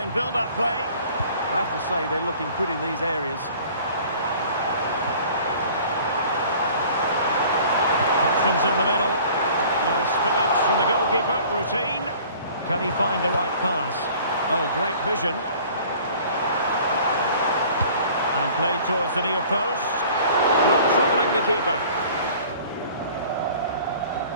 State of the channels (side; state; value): both; inverted; correlation -0.49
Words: build-up play. I have to say they're looking good in these areas. Options in the middle. No spillage from the goalkeeper. Routine. Can he find the right pass? Oh, great vision. And played towards the near post. Not troubling the keeper.